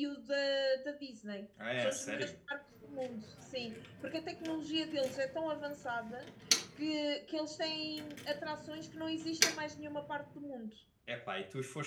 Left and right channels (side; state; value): both; identical; correlation 1.00